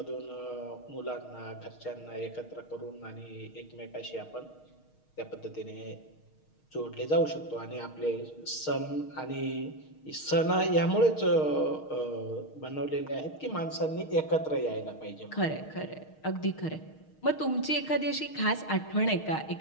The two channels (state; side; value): late; right; 6.4 ms